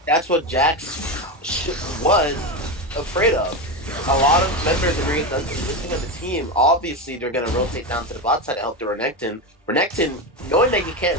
that's what Jax was afraid of. A lot of members of Maria's Dungeon listening on the team, obviously they're gonna rotate down to the bot side to help the Renekton. Renekton, knowing that he can't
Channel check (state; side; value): normal; both; correlation 0.16